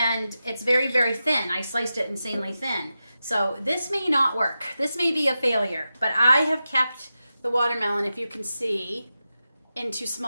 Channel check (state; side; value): inverted; both; correlation -0.91